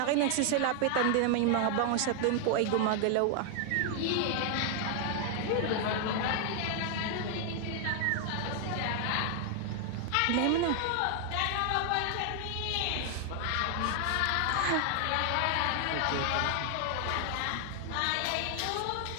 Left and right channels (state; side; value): different; both; correlation 0.00